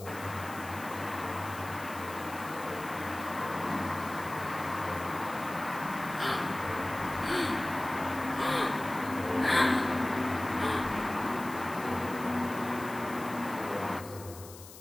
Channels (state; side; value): noise; left; hiss, 16 dB below the sound